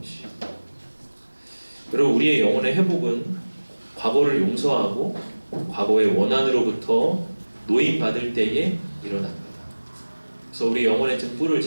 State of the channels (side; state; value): both; inverted; correlation -1.00